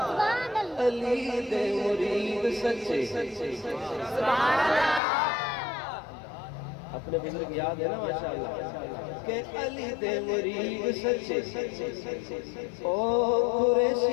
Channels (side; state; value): right; drops out; at 5.0 s